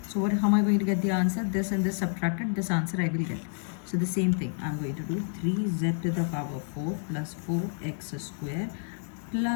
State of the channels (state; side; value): silent; right; 59 dB below the other